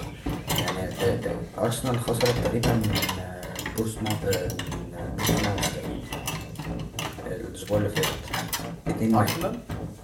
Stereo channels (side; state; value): both; identical; correlation 1.00